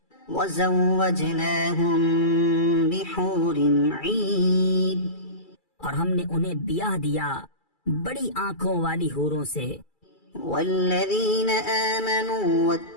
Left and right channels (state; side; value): late; right; 2.3 ms